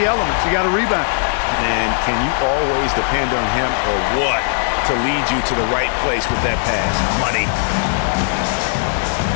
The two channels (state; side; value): silent; right; digital silence